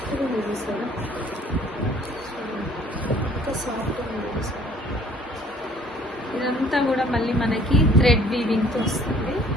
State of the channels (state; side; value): normal; both; correlation 0.56